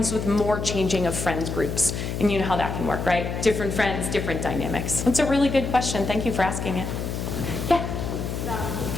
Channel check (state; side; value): noise; left; hum, 4 dB below the sound